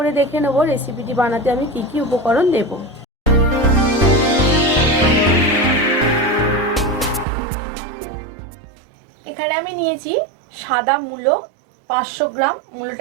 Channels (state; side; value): drops out; left; at 7.2 s